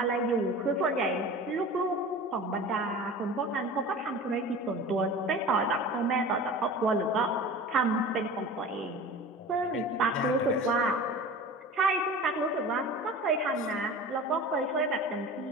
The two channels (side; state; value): both; normal; correlation 0.37